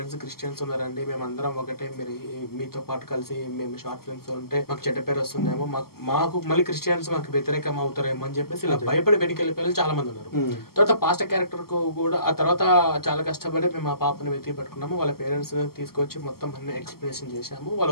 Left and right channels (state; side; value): late; right; 0.94 ms